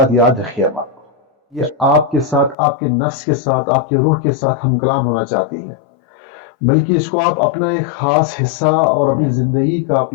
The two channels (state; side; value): drops out; right; at 2.6 s